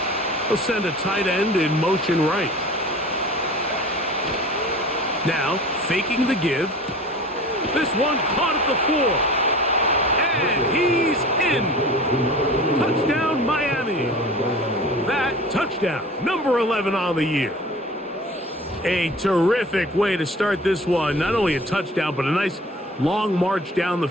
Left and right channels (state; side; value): normal; both; correlation 0.41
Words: They'll send a tight end in motion right. Now, faking the give. This one caught at the 4. And he's in. Touchdown, Miami. That touchdown, number 11 on the year. A terrific way to start this one. Not only a touchdown, but a nice long march down the